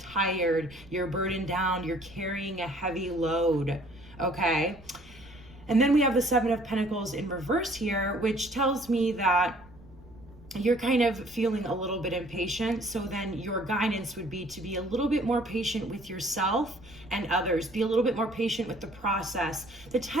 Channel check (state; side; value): noise; right; rumble, 23 dB below the sound